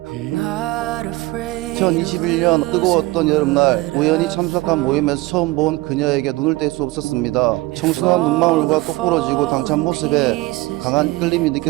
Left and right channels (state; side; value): quieter; left; 20.4 dB